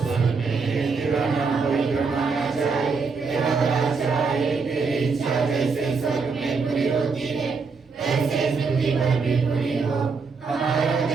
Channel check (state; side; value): quieter; left; 4.8 dB